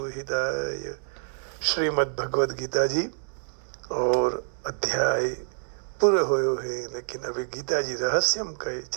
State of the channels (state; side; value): silent; left; 60 dB below the other